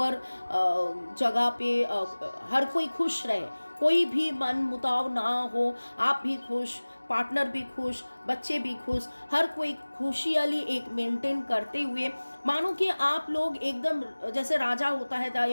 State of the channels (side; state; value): both; inverted; correlation -1.00